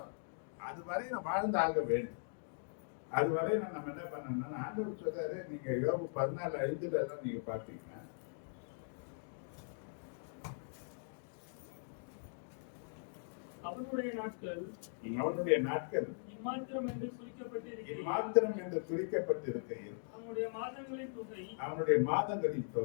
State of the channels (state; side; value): silent; right; digital silence